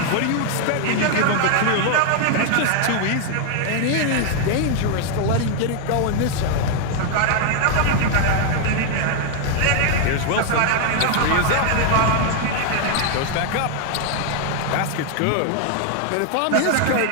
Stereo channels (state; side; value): different; both; correlation 0.00